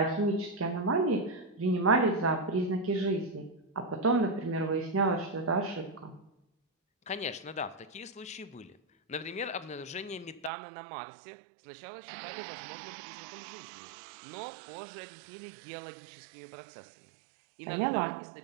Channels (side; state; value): left; drops out; at 10.5 s